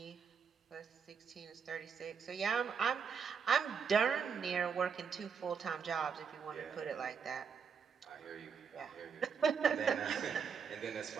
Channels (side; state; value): left; quieter; 6.3 dB